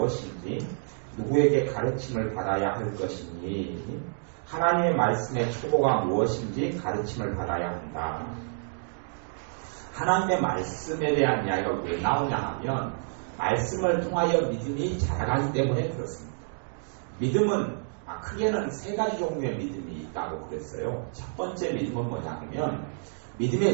누구에게 가르침을 받아야 할 것이니 하나님의 말씀의 초보가 무엇인지 가르침을 받아야 한다. 하나님의 말씀에 대한 이야기가 왜 나오냐 하면 말씀을 통하여 믿음이 자라가기 때문에 그렇습니다. 믿음은 크게는 세 가지 종류의 믿음이 있다고 그랬어요. 첫 번째 믿음은 뭐냐면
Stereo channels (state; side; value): silent; left; digital silence